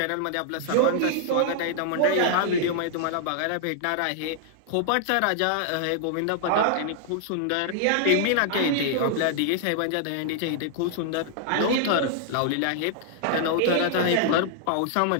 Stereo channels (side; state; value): both; different; correlation -0.01